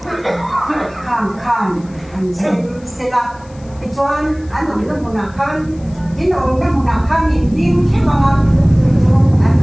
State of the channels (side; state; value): left; noise; hiss, 28 dB below the sound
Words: khang anh xem xe là Ichuan anong na munakan, inong na munakan hindi siya mga